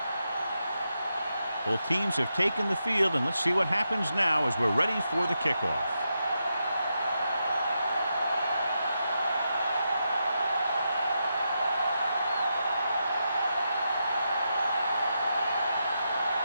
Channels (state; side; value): inverted; both; correlation -0.85